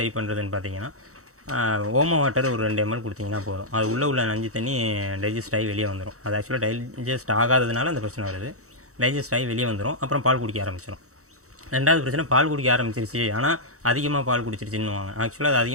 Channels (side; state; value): left; late; 0.65 ms